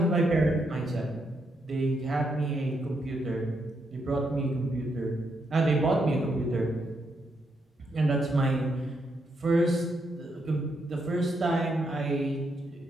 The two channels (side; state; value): both; normal; correlation 0.79